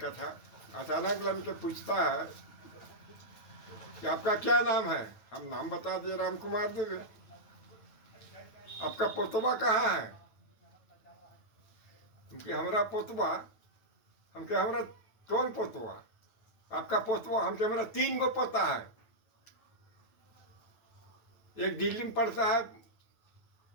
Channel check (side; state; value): right; late; 9.1 ms